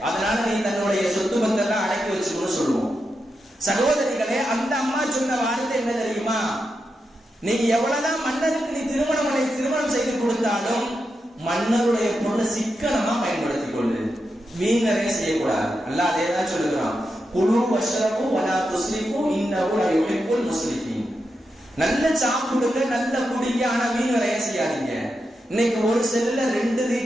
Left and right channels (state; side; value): normal; both; correlation 0.87